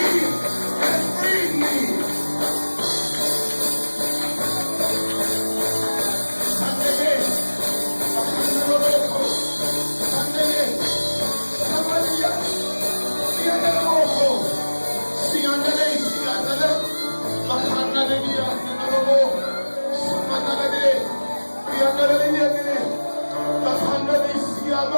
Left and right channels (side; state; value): both; inverted; correlation -1.00